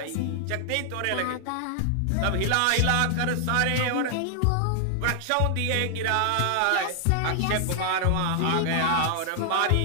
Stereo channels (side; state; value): both; different; correlation 0.00